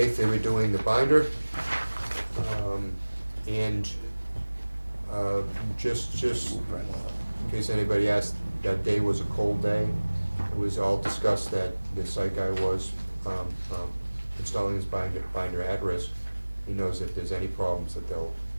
they were doing the binder, and just in case anybody asked, that day was a cold day. It was all discussed that the site guy was installing his binder at risk, he knows if there's any problems that they'll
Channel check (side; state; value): both; inverted; correlation -1.00